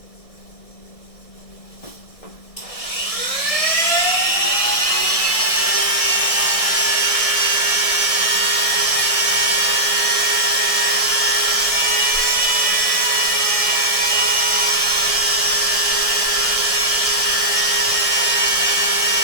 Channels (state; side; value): late; right; 1.6 ms